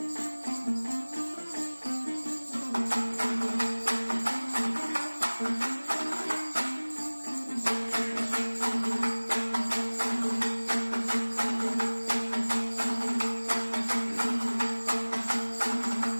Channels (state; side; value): inverted; both; correlation -1.00